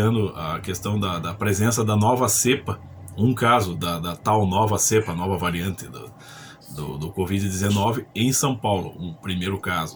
a questão da presença da nova cepa, um caso da tal nova cepa, nova variante do Covid-19 em São Paulo, um primeiro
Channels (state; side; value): identical; both; correlation 1.00